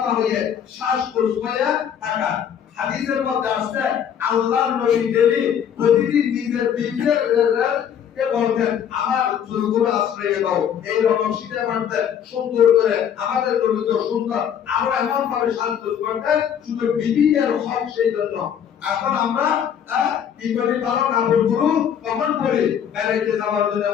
হয়ে সাজগোজ হয়ে থাকা। হাদিসের মধ্যে আসছে আল্লাহর নবী ডেলি প্রতিদিন নিজের বিবিদেরকে বলতেন, আমার চুলগুলো আশ্রয় দাও, এইরকম শীতে মারতেন সুন্দর করে। আমাদের নবী তো সুন্দর, আমরা এমন ভাবে সাজগোজ করতেন, শুধু বিবিদের হক। সেই জন্য এখন আমরা কি করি? ভালো কাপড়গুলো কখন পরি? বেড়াইতে যাওয়ার জন্য,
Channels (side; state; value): right; quieter; 8.7 dB